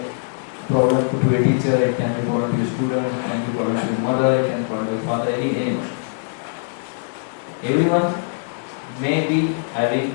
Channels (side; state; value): right; silent; digital silence